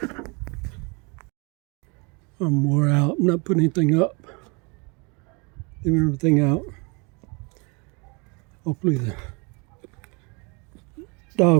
I'm wore out. I'm not putting anything up. Leaving everything out. Hopefully the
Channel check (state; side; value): quieter; left; 30.9 dB